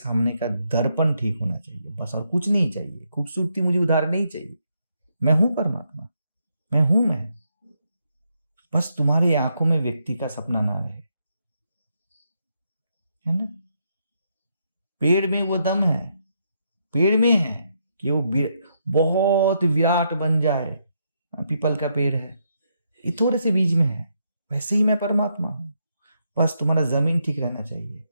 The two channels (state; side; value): inverted; both; correlation -0.78